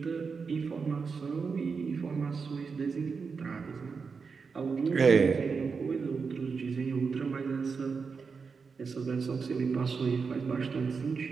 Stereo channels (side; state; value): left; quieter; 5.2 dB